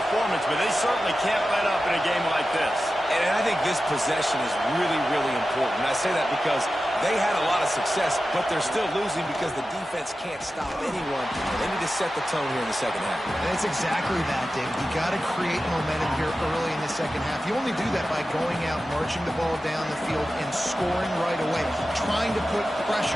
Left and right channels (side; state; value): both; normal; correlation 0.93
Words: but they certainly can't let up in a game like this. And I think this possession is really, really important. I say that because they had a lot of success, but they're still losing because the defense can't stop anyone. They need to set the tone here in the second half. And it's exactly that, David. You got to create momentum here early in the second half. You only do that by going out, marching the ball down the field, and scoring right away, trying to put